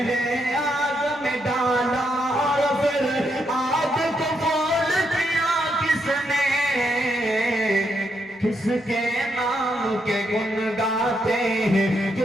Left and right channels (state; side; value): normal; both; correlation 0.79